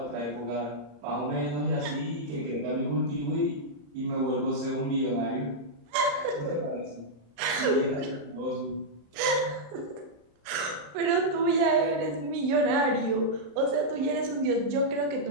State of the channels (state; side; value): late; left; 35 ms